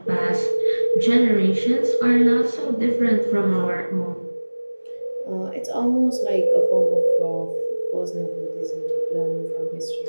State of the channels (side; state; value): both; inverted; correlation -1.00